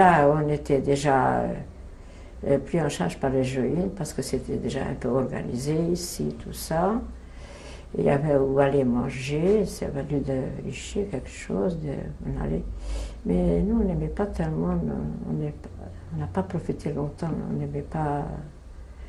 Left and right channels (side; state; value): both; identical; correlation 1.00